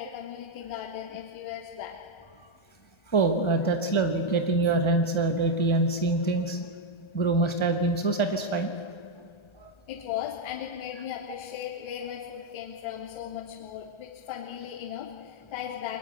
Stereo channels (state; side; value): late; right; 1.3 ms